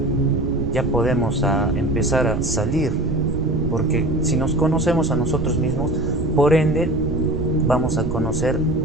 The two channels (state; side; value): noise; right; rumble, 4 dB below the sound